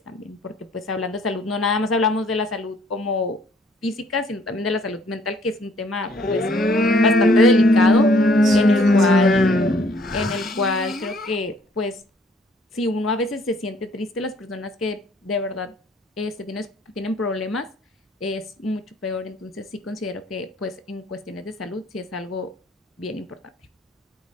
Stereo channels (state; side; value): normal; both; correlation 0.61